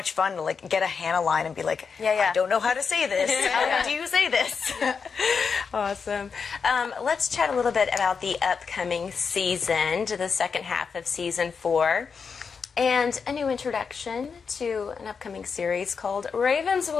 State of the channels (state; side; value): quieter; right; 5.7 dB